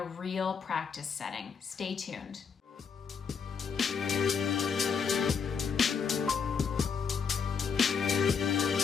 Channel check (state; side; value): quieter; right; 6.1 dB